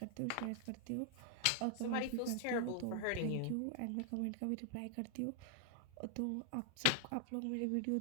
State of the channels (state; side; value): different; both; correlation 0.00